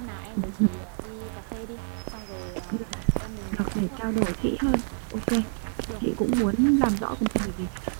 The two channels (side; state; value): left; silent; digital silence